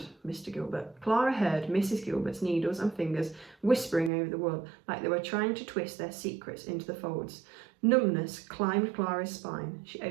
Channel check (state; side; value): drops out; left; at 4.1 s